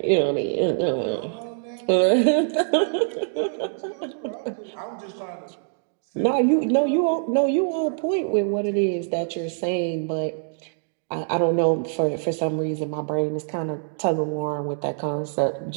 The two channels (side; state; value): left; silent; digital silence